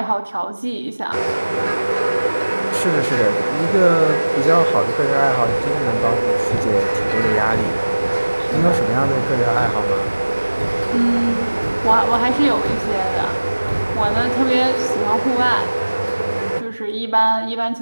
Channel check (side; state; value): both; inverted; correlation -1.00